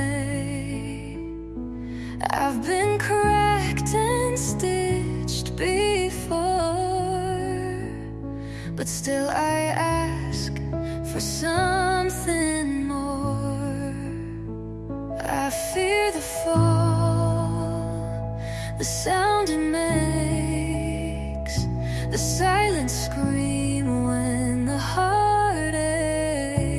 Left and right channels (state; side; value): identical; both; correlation 1.00